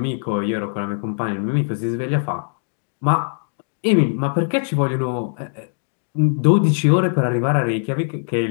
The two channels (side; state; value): right; silent; digital silence